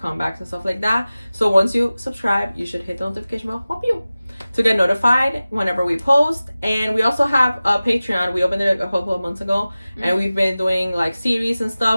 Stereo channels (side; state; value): both; inverted; correlation -0.97